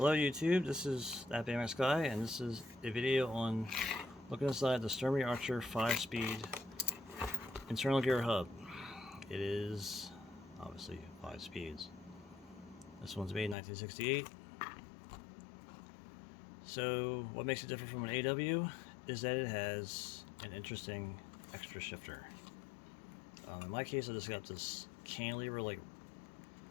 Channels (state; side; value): drops out; right; at 13.6 s